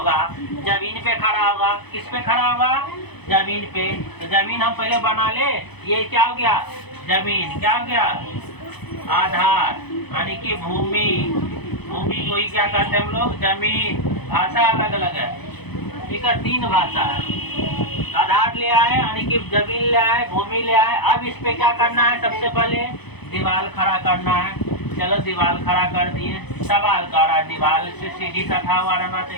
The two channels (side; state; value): right; late; 0.98 ms